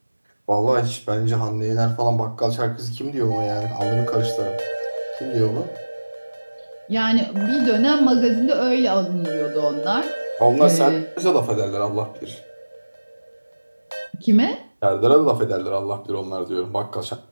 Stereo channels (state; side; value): inverted; both; correlation -1.00